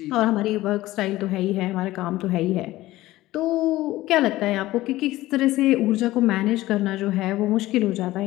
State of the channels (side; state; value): right; quieter; 16.9 dB